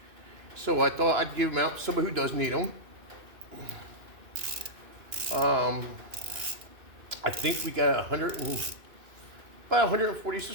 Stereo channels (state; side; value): late; left; 2.9 ms